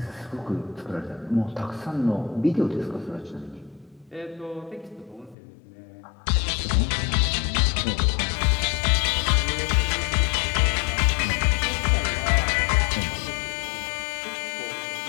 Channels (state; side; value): drops out; right; at 5.4 s